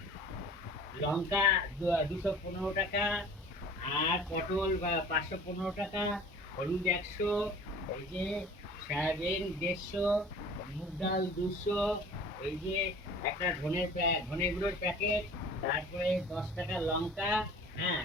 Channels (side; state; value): both; normal; correlation 0.45